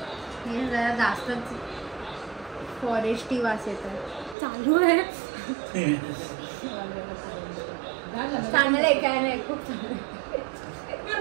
हे जरा जास्तच फॉरेस्टी वास येतात. चालू आहे. चांगलं आहे काय नाही. खूप चांगलं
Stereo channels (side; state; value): left; drops out; at 4.4 s